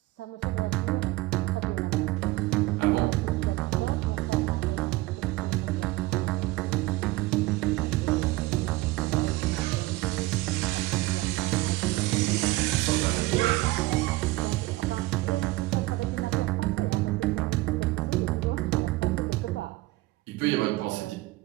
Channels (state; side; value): quieter; left; 19.9 dB